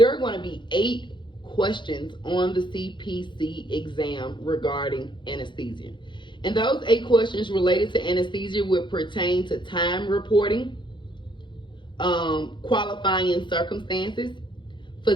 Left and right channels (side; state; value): right; late; 0.23 ms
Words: are going to be 8 questions on the CPC exam regarding anesthesia. And those 8 questions related to anesthesia will pertain to time reporting, qualifying circumstances,